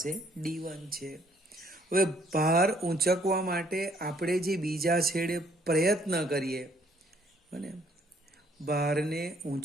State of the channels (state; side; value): normal; both; correlation 0.65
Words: D1 છે. હવે ભાર ઊંચકવા માટે આપણે જે બીજા છેડે પ્રયત્ન કરીએ બને ભારને